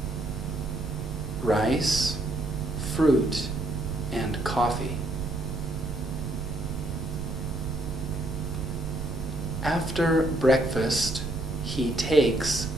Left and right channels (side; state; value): right; noise; rumble, 5 dB below the sound